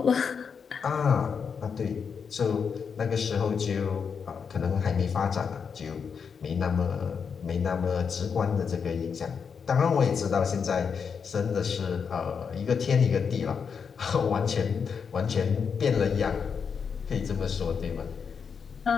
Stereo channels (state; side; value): quieter; right; 6.3 dB